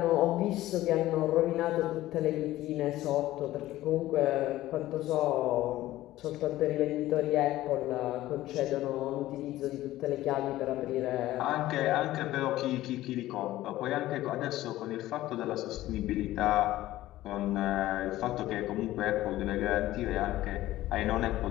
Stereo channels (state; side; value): quieter; right; 15.5 dB